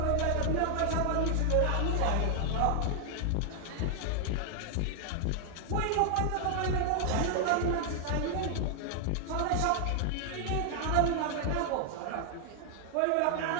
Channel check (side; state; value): both; different; correlation 0.00